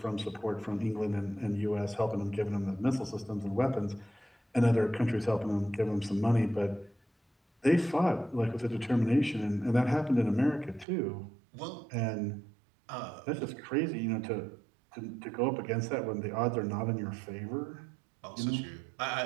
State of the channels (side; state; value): left; drops out; at 10.9 s